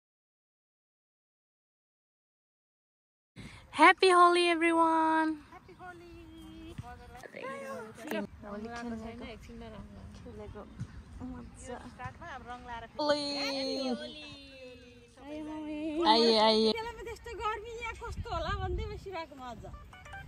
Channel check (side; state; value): both; identical; correlation 1.00